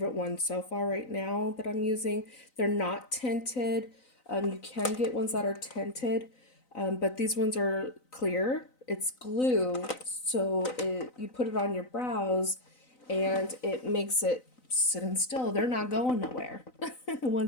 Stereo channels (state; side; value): late; right; 3.9 ms